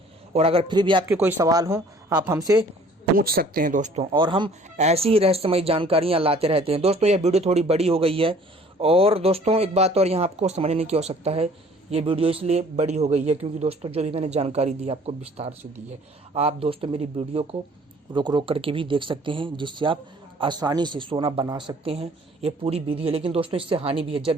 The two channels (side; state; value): both; normal; correlation 0.54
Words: और अगर फिर भी आपके कोई सवाल हो आप हमसे पूछ सकते हैं दोस्तों। और हम ऐसी ही रहस्यमयी जानकारियाँ लाते रहते हैं। दोस्तों यह वीडियो थोड़ी बड़ी हो गई है और दोस्तों एक बात और यहाँ आपको समझने की आवश्यकता है। ये वीडियो इसलिए बड़ी हो गई है क्योंकि दोस्तों जो भी मैंने जानकारी दी आपको विस्तार से दी है। आप दोस्तों मेरी वीडियो को रोक करके भी देख सकते हैं जिससे आप आसानी से सोना बना सकते हैं। ये पूरी विधि है, लेकिन दोस्तों इससे हानि भी है।